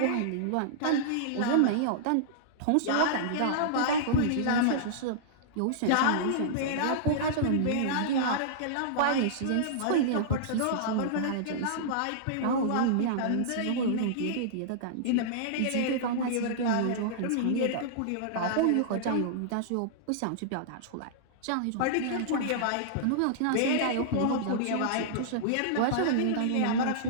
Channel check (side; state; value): both; different; correlation -0.02